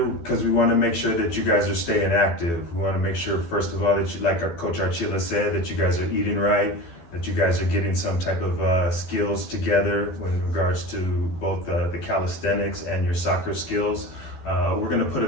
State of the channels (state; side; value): late; right; 12 ms